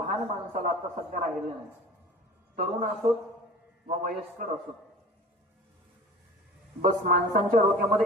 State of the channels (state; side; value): normal; both; correlation 0.41